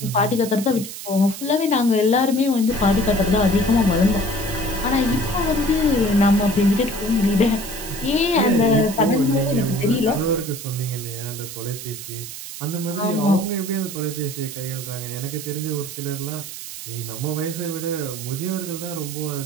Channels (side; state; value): right; noise; hiss, 10 dB below the sound